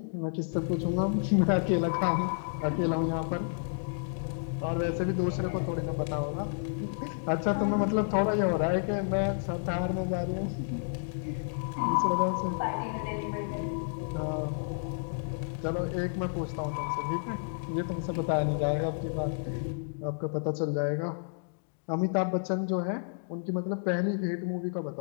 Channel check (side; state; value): right; silent; digital silence